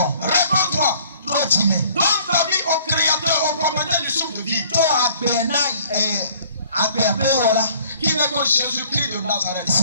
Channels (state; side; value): inverted; both; correlation -0.55